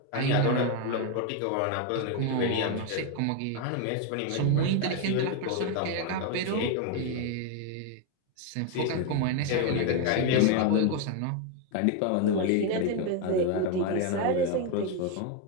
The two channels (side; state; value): both; different; correlation 0.01